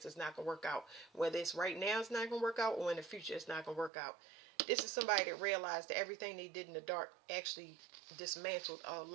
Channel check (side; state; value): left; drops out; at 3.9 s